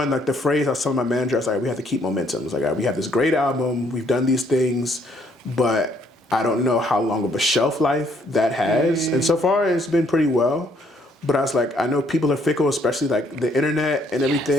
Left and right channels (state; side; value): normal; both; correlation 0.67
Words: like the phrase I was telling my manager, I was like, we have to keep momentum. It's like, we have this great album, we've done these things, but I don't know how long of a shelf life that has. And so far it's been pretty well. But I was like, I know people are fickle, especially like the internet and